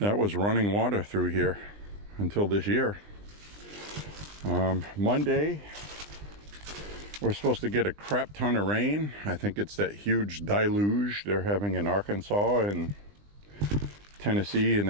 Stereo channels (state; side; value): late; left; 20 ms